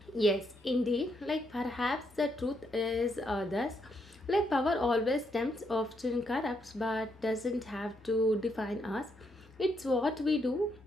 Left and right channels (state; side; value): normal; both; correlation 0.77